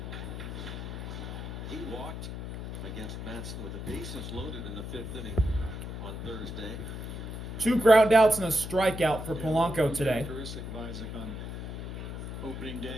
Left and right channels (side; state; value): left; noise; hum, 7 dB below the sound